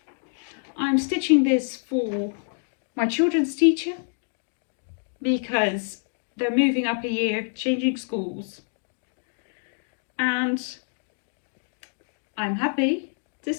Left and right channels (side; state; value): right; silent; 60 dB below the other